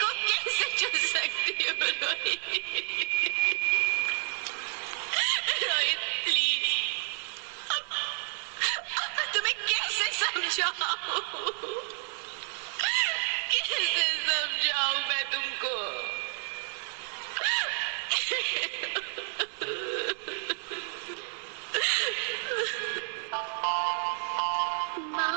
को कैसे चुन सकती हूँ? रोहित प्लीज, अब मैं तुम्हें कैसे समझाऊं? कैसे समझाऊं मैं तुमको?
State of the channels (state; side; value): silent; left; 58 dB below the other